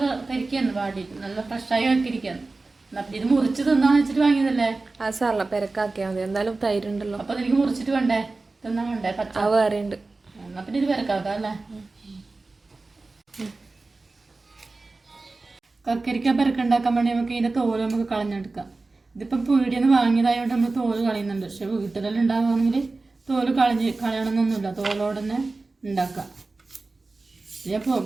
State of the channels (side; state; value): left; quieter; 3.5 dB